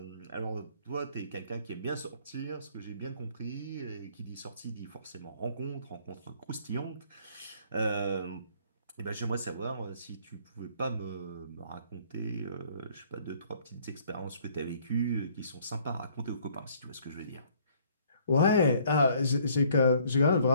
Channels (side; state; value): both; inverted; correlation -0.61